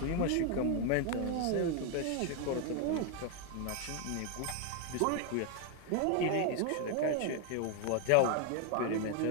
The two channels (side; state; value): both; different; correlation 0.01